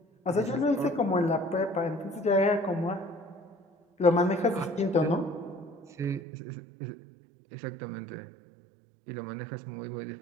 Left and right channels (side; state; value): left; drops out; at 6.2 s